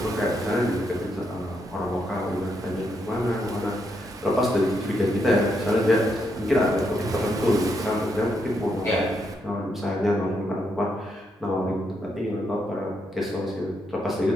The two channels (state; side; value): normal; both; correlation 0.79